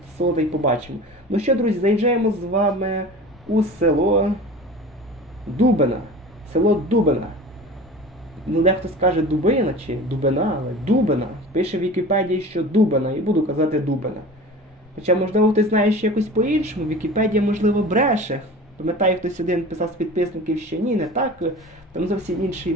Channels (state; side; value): normal; both; correlation 0.37